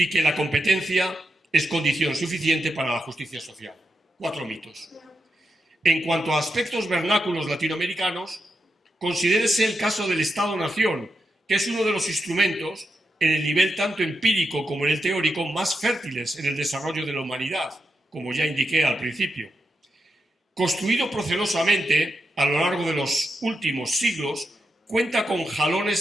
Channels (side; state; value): both; normal; correlation 0.85